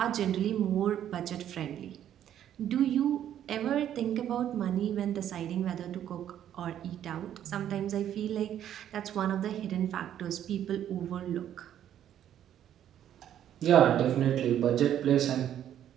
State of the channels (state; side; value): quieter; left; 10.6 dB